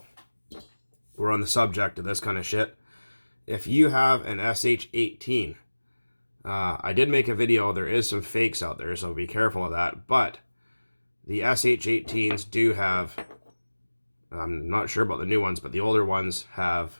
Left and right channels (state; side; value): inverted; both; correlation -1.00